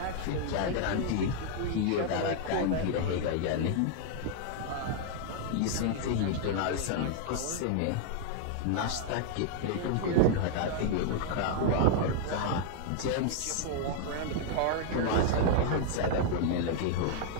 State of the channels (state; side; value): different; both; correlation -0.01